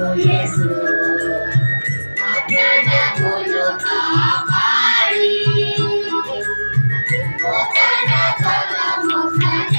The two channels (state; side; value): inverted; both; correlation -1.00